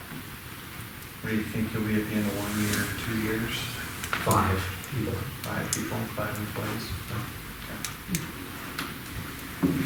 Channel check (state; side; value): identical; both; correlation 1.00